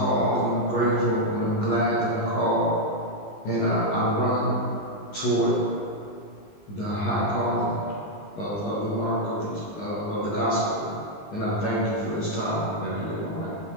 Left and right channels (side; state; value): right; late; 20 ms